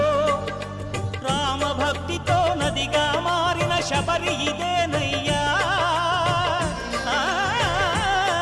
రామభక్తితో నదిగా మారిన శబరి ఇదేనయ్యా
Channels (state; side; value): identical; both; correlation 1.00